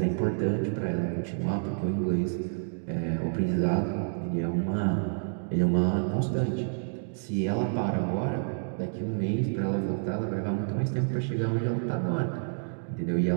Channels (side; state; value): left; silent; digital silence